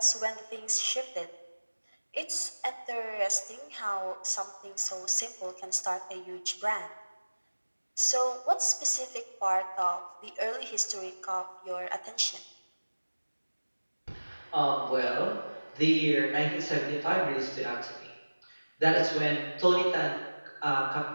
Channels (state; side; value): inverted; both; correlation -1.00